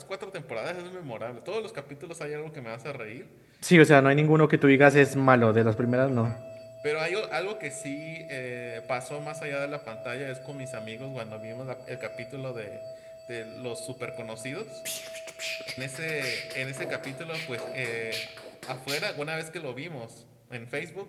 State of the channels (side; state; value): both; identical; correlation 1.00